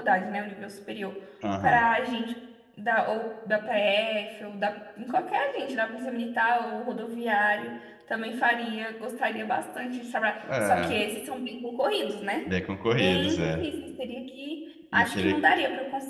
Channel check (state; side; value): identical; both; correlation 1.00